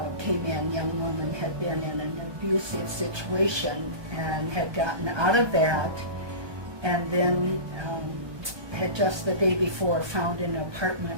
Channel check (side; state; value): left; late; 1.2 ms